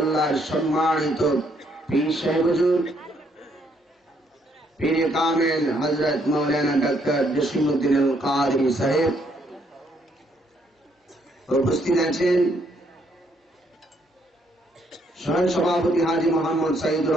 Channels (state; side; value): normal; both; correlation 0.71